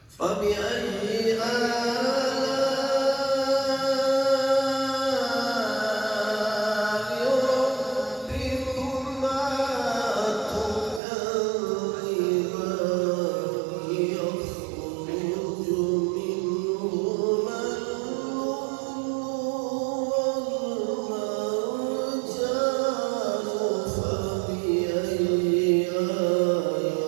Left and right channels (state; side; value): drops out; left; at 11.0 s